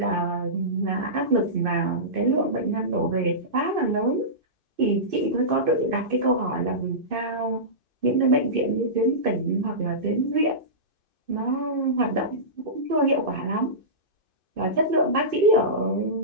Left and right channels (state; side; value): late; left; 2.6 ms